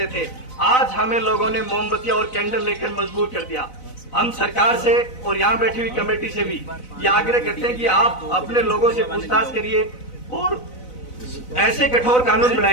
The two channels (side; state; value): right; late; 4.0 ms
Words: थे। आज हमें लोगों ने मोमबत्तियां और कैंडल लेकर मजबूर कर दिया। हम सरकार से और यहाँ बैठी हुई कमेटी से भी ये आग्रह करते हैं कि आप अपने लोगों से पूछताछ करिए और ऐसे कठोर कानून